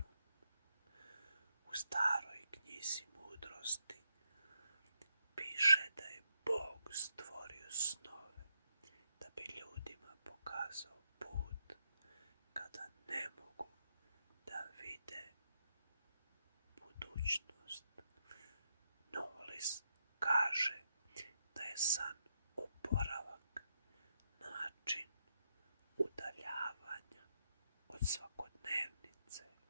U staroj knjizi mudrosti piše da je Bog stvorio snove da bi ljudima pokazao put kada ne mogu da vide budućnost. Knowles kaže da je san oporavak, način udaljavanja od svakodnevnice,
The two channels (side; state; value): both; inverted; correlation -0.81